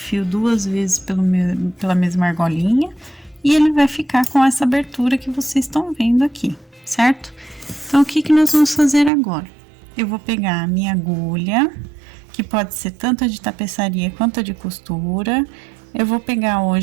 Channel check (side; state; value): left; drops out; at 9.1 s